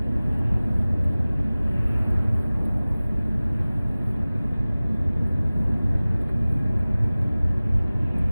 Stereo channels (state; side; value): inverted; both; correlation -0.99